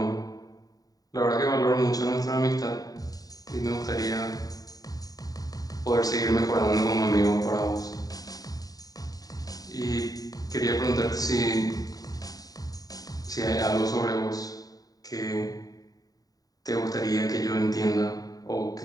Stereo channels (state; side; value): late; right; 0.18 ms